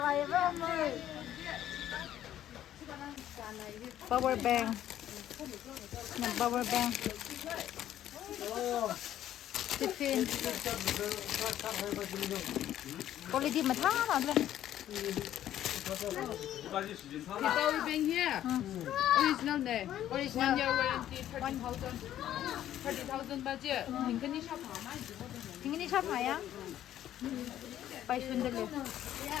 vậy với ông ơi power bank nè power bank tiffin quality mà thả nào lên The power bank here. Original ne. Original year warranty 30,000 budget. Tingani shop hama. tingini shop haya pai sunderle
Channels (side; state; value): right; quieter; 11.9 dB